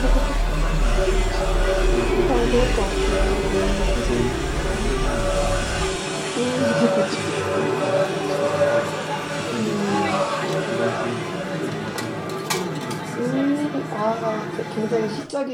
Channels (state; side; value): identical; both; correlation 1.00